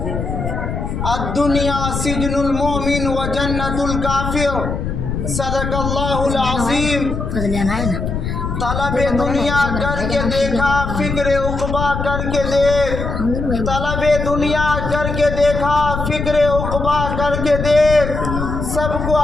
الدنیا سجن المؤمن و جنت الکافر صدق اللہ العظیم۔ طلب دنیا کر کے دیکھا فکر عقبہ کر کے دیکھ، طلب دنیا کر کے دیکھا فکر عقبہ کر کے دیکھ، سب کو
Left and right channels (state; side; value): noise; left; rumble, 4 dB below the sound